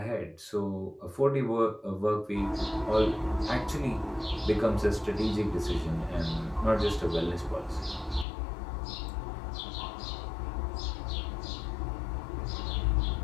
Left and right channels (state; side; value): drops out; right; at 8.2 s